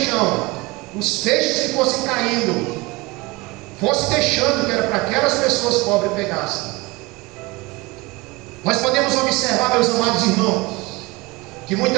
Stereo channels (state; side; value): quieter; left; 22.8 dB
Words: os feixes que fossem caindo, fosse deixando, que era para aquelas pessoas pobres pegassem. Nós podemos observar, meus amados irmãos, que